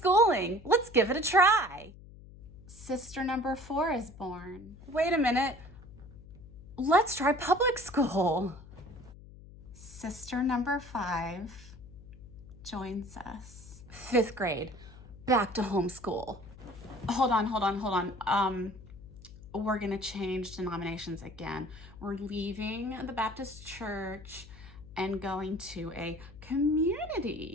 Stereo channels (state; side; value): noise; left; hum, 18 dB below the sound